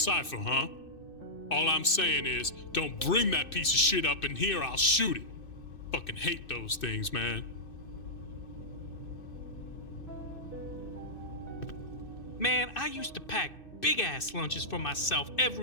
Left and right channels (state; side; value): late; right; 2.6 ms